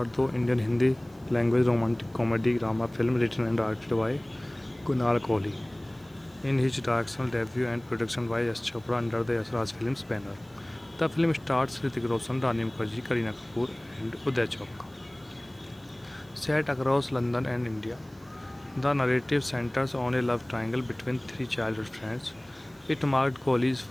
Indian Hindi language romantic comedy drama film written and directed by Kunal Kohli in his directorial debut and production by S. Chopra under the S. Raj Films banner. The film stars Hrithik Roshan, Rani Mukherjee, Kareena Kapoor and Uday Chopra. Set across London and India, the narrative centers on a love triangle between three childhood friends. It marked Kohli's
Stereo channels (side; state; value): right; noise; hiss, 30 dB below the sound